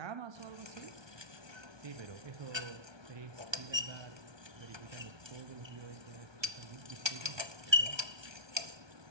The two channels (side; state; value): left; late; 1.2 ms